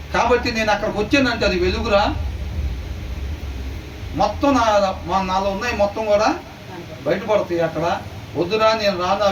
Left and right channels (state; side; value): identical; both; correlation 1.00